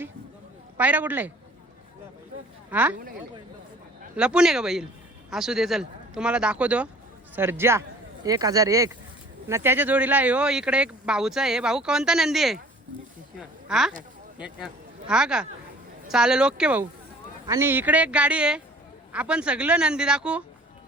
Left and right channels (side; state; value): both; normal; correlation 0.50